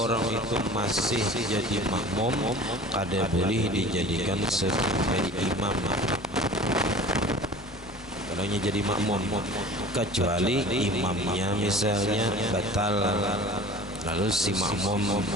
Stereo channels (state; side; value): noise; left; hum, 22 dB below the sound